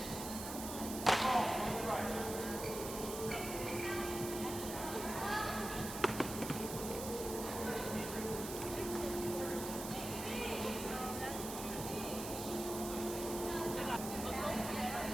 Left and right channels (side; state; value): right; noise; hiss, 7 dB below the sound